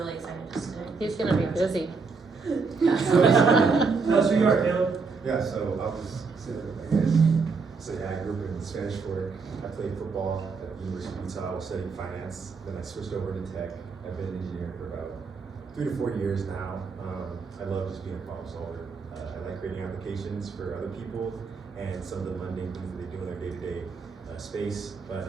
excited just to. He's going to be busy. Tell us who you are, Caleb. Yeah, so I'll just say, I grew up in Spanish Fork. I played football at the University of Utah. I was studying finance. Then I switched over to tech. I've been an engineer for about 3 to 4 years now. I love just being a problem solver. I like creating applications for other people and some of the mundane things that they do in their day-to-day space. But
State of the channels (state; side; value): quieter; left; 4.7 dB